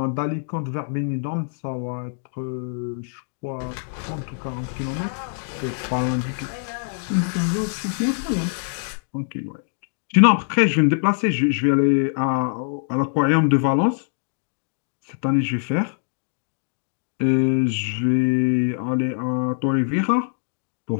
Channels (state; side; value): silent; right; digital silence